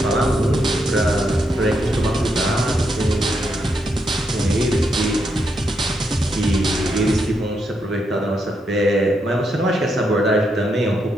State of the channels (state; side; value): normal; both; correlation 0.80